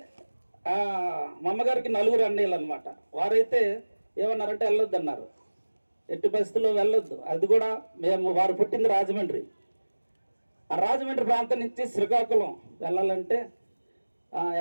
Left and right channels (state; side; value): inverted; both; correlation -1.00